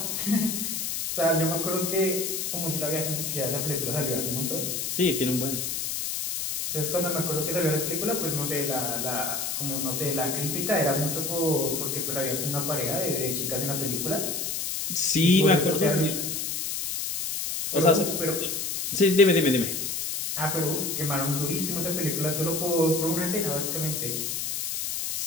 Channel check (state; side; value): noise; left; hiss, 2 dB below the sound